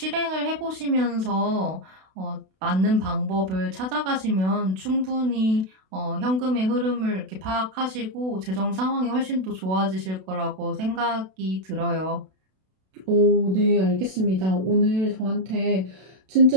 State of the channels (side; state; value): left; late; 32 ms